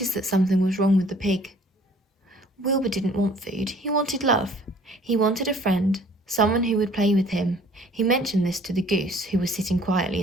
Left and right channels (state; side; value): normal; both; correlation 0.55